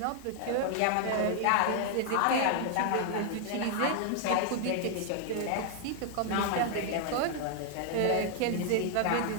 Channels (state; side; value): different; both; correlation 0.00